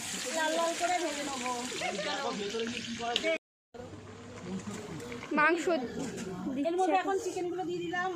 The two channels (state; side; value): identical; both; correlation 1.00